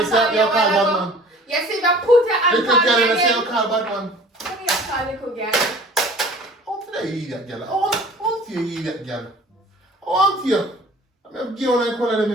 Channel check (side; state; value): both; normal; correlation 0.47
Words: on me a while ago. You see me put your hands on me again. Little girl, you call bad man. Come here, call little girl. I want to hear that girl. I want you to hear that girl. I want you. I'm going to give you one call them, you